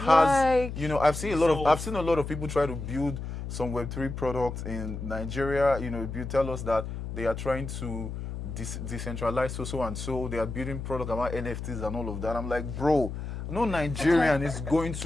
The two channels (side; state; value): left; noise; hum, 7 dB below the sound